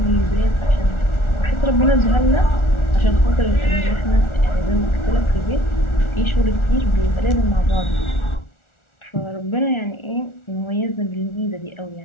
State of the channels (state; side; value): late; right; 1.4 ms